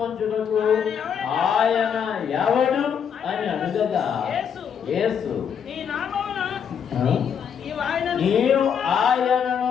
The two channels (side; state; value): right; quieter; 7.6 dB